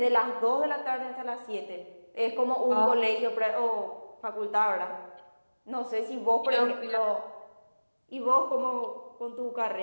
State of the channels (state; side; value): inverted; both; correlation -1.00